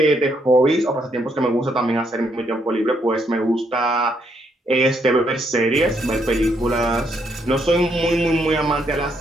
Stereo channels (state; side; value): normal; both; correlation 0.74